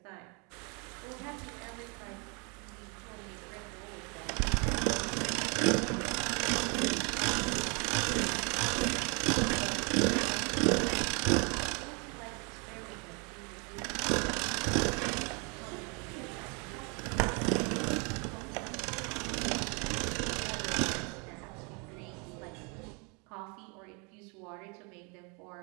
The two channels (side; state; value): left; quieter; 33.2 dB